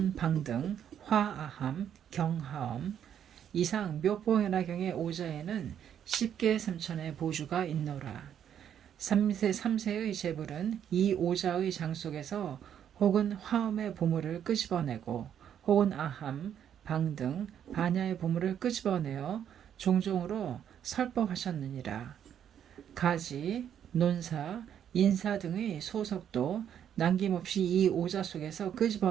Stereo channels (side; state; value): left; quieter; 9.3 dB